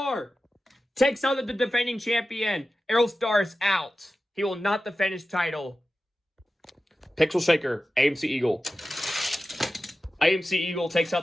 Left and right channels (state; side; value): normal; both; correlation 0.94